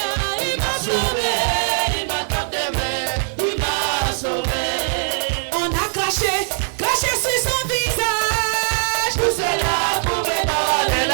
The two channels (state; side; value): silent; left; 64 dB below the other